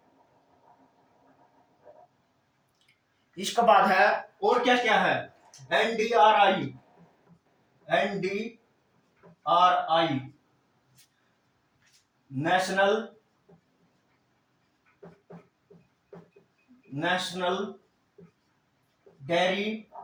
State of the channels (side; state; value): both; identical; correlation 1.00